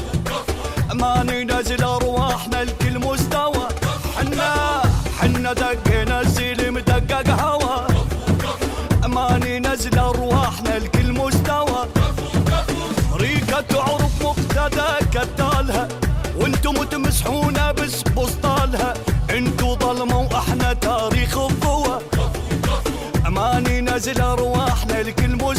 ما ننزل ارواحنا لكل مستوى. حنا دقنا السلم دقق هوا، ما ننزل ارواحنا لكل مستوى. ريقة تعرف مقتدى كتالها، وانتم تمسحونا بس بسطالها. انتو ظلمة واحنا تاريخ الضوى، ما ننزل ارواحنا لكل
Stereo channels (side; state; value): both; identical; correlation 1.00